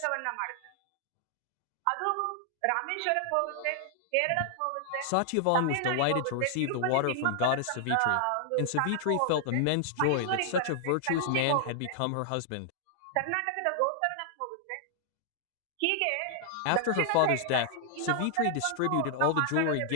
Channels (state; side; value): different; both; correlation -0.01